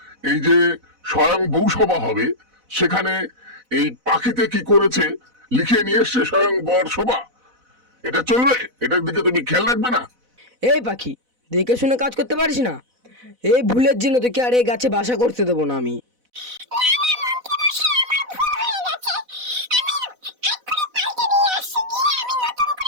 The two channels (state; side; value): late; left; 4.0 ms